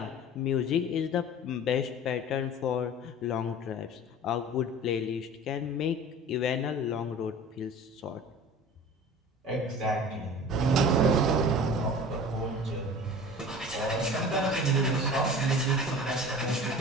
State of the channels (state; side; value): normal; both; correlation 0.40